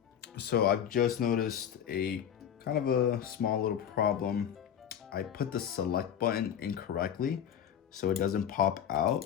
So I've just noticed a kind of a small little problem. I put the select button incorrectly, so it doesn't pop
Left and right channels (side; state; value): right; quieter; 9.2 dB